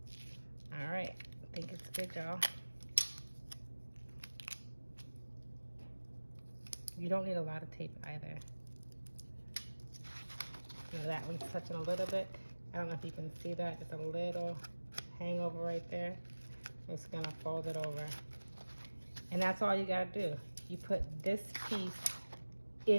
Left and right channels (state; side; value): inverted; both; correlation -1.00